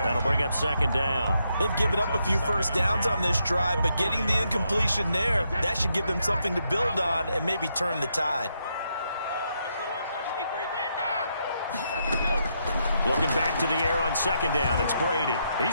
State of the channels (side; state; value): both; inverted; correlation -0.79